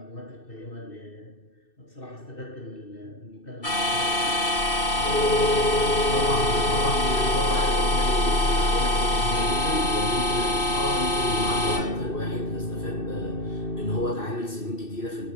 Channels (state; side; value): late; right; 2.6 ms